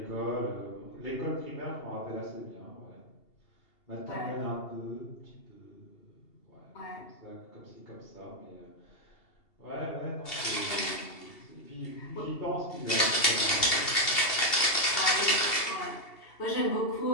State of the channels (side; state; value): right; late; 2.8 ms